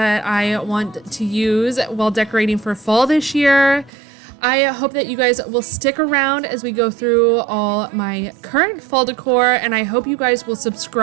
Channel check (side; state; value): left; drops out; at 3.9 s